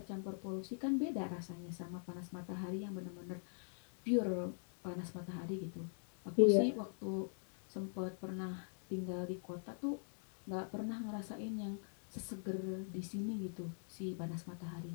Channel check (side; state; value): right; silent; digital silence